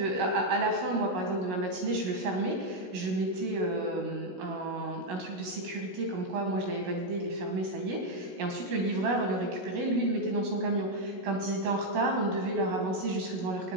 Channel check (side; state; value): left; late; 16 ms